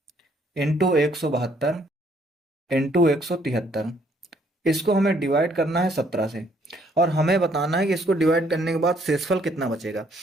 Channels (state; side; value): normal; both; correlation 0.66